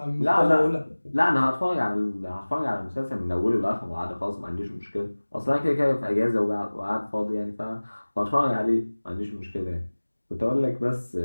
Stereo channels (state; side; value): inverted; both; correlation -1.00